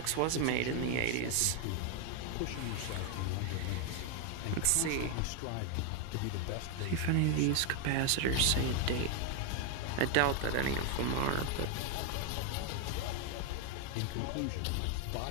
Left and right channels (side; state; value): both; different; correlation 0.01